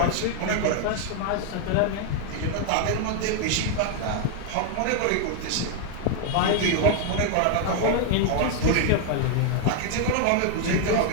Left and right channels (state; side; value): different; both; correlation 0.00